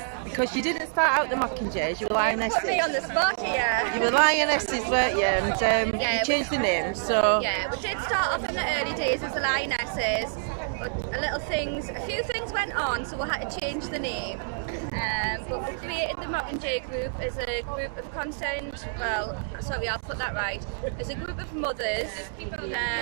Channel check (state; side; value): silent; left; digital silence